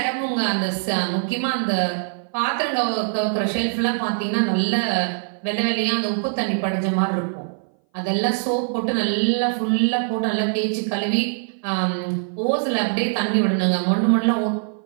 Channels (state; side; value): silent; left; 59 dB below the other